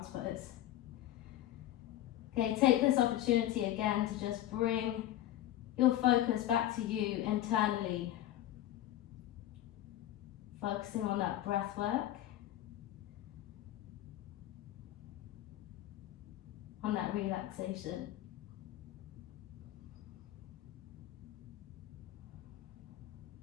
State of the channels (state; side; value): quieter; right; 13.4 dB